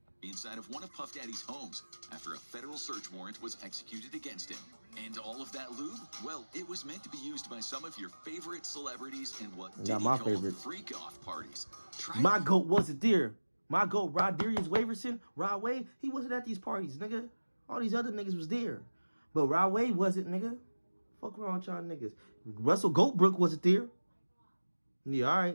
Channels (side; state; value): both; inverted; correlation -1.00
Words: Inside of one of Puff Daddy's homes after a federal search warrant was executed against him. And all of that lube, well, it was meant to be used by some of your favorite celebrities in what Diddy called freak-off parties. My GOAT wasn't there. My GOAT, Rodarius Waverson, Rod Wave, he wasn't at these parties, nigga. All these other niggas was there. But Rod Wave wasn't, nigga. Fuck around with y'all niggas. Russell Goldbrook wasn't there. Yeah, all right,